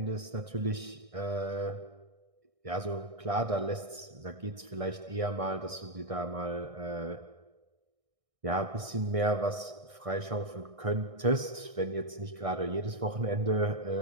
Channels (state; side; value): late; left; 1.6 ms